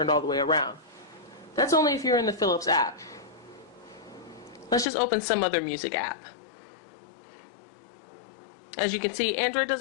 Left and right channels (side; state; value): right; drops out; at 4.9 s